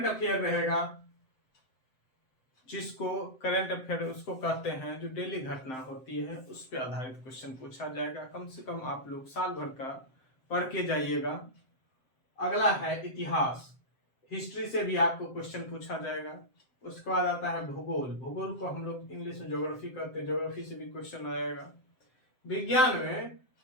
अफेयर रहेगा, जिसको करंट अफेयर उसको कहते हैं जो डेली घटना होती है उस पर आधारित क्वेश्चन पूछा जाएगा। कम से कम आप लोग साल भर का पढ़ के जाइएगा। अगला है इतिहास, हिस्ट्री से भी आपको क्वेश्चन पूछा जाएगा। उसके बाद आता है भूगोल, भूगोल को हम लोग इंग्लिश में ज्योग्राफी कहते हैं, ज्योग्राफी से भी क्वेश्चन आएगा। विज्ञान में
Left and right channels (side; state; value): right; late; 7.7 ms